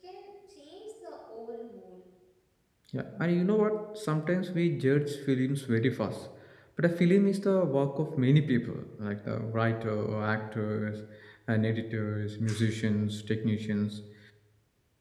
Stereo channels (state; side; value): identical; both; correlation 1.00